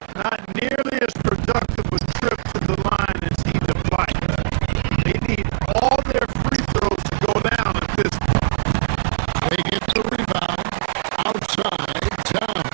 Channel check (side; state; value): left; silent; digital silence